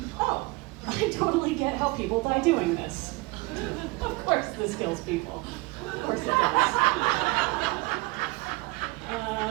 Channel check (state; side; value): quieter; left; 23.6 dB